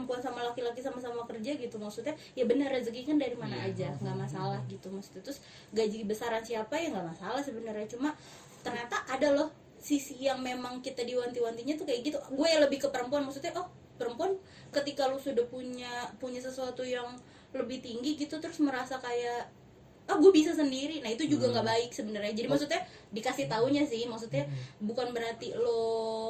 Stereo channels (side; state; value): both; identical; correlation 1.00